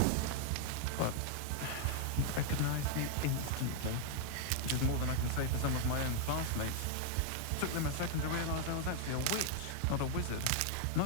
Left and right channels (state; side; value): different; both; correlation 0.00